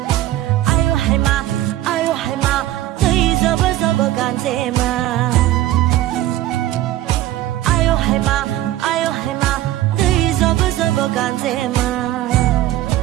ayo haima dai zobo zobo ganzema ayo haima dai zobo zobo ganzema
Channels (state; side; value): quieter; left; 14.4 dB